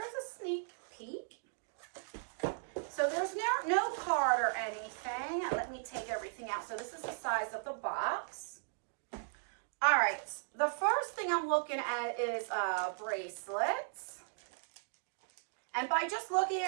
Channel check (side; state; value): left; silent; digital silence